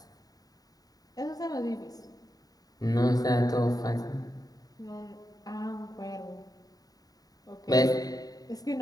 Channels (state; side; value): late; right; 0.18 ms